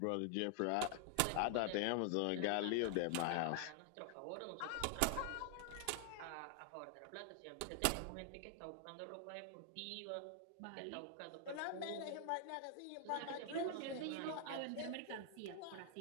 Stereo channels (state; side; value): different; both; correlation 0.00